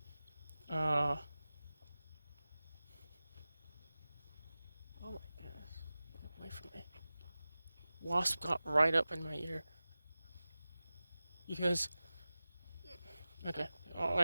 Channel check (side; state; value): both; inverted; correlation -0.96